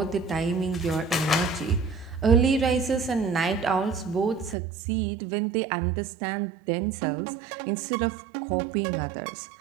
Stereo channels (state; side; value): drops out; left; at 4.5 s